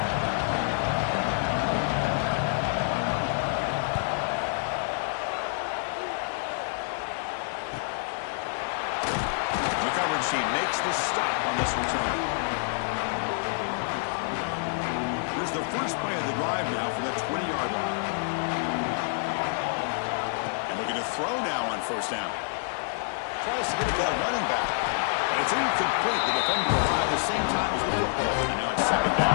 She makes the stop on this return. Here's the first play of the drive now for that 20-yard line. And looking to throw now on first down. Tries to get it to the running back. And it's incomplete. The defender arrived at the same time as the football. And now it's second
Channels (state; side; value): silent; right; digital silence